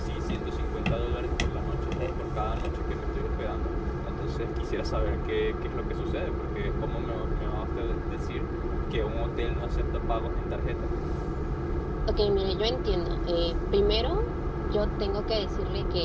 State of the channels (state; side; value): identical; both; correlation 1.00